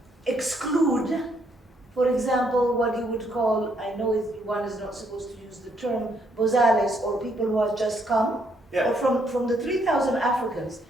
exclude, for example, what you would call, I know one is not supposed to use the term, bozales, or people who have just come. Yeah. Or from the 3,000 Africans,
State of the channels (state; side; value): normal; both; correlation 0.72